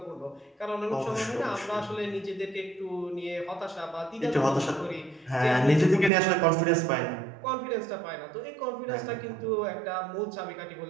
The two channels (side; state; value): left; drops out; at 6.1 s